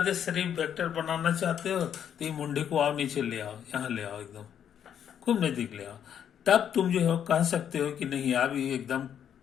शरीफ वेक्टर बनाना चाहते हो तो ये मुंडे को आओ नीचे ले आओ, यहाँ ले आओ, एकदम खूब नजदीक ले आओ, तब तुम जो है कह सकते हो कि नहीं अब ये एकदम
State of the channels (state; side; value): quieter; right; 9.0 dB